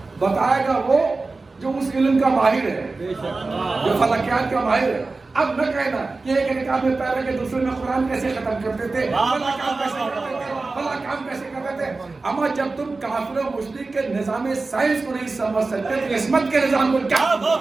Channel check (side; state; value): left; quieter; 3.7 dB